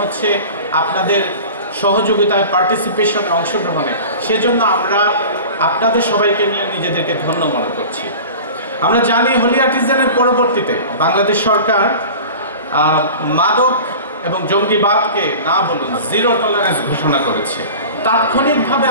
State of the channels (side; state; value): both; inverted; correlation -0.37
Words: আপনাদের সহযোগিতায়, পার্টিসিপেশনে, অংশগ্রহণে। সেজন্য আমরা আপনাদের সবাইকে নিয়ে নিজেদেরকে ধন্য মনে করছি। আমরা জানি হোলি আর্টিজানের পরবর্তীতে বাংলাদেশ সরকার মাদক এবং জঙ্গিবাদকে না বলুন জিরো টলারেন্স ঘোষণা করেছে। তাৎক্ষণিকভাবে